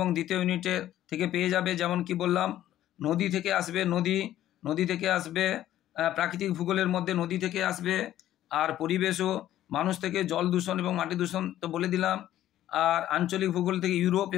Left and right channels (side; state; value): right; quieter; 12.8 dB